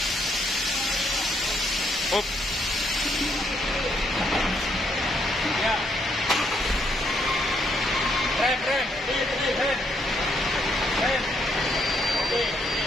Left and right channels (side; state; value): both; normal; correlation 0.73